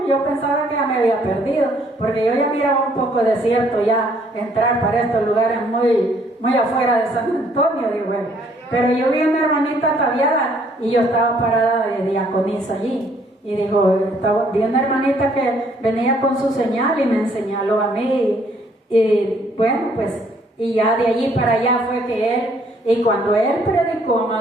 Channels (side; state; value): both; normal; correlation 0.64